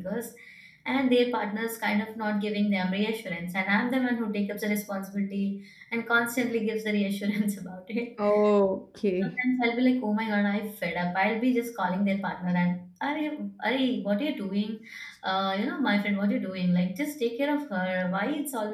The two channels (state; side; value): identical; both; correlation 1.00